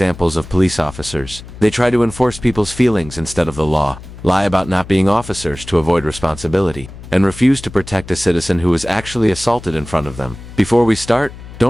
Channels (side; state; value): left; noise; hum, 15 dB below the sound